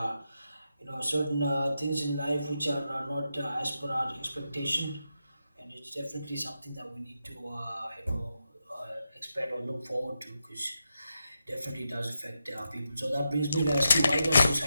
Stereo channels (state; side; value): inverted; both; correlation -0.86